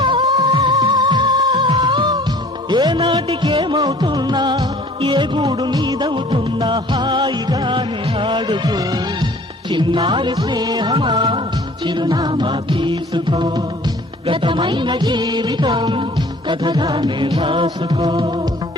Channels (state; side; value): normal; both; correlation 0.50